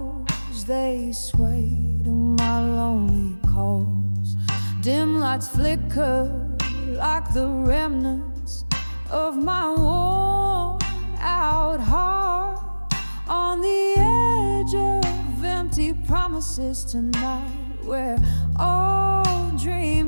they sway to my lonely calls. Dim lights flicker like the remnants of my worn out heart, on the edge of empty promises tonight, where all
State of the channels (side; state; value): both; inverted; correlation -1.00